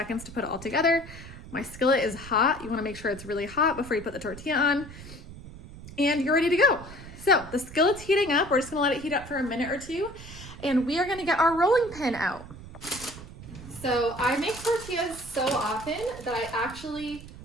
to put it all together, my skillet is hot. You wanna make sure it's really hot before you put the tortilla on, and you're ready to go. So the skillet's heating up. We're just gonna let it heat up for a minute or two, and we are gonna get our rolling pin out. So I make tortillas so often that I actually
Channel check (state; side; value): noise; right; rumble, 15 dB below the sound